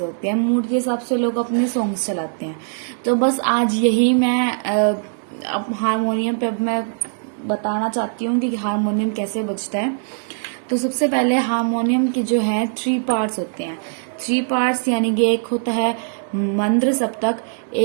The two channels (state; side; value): silent; left; digital silence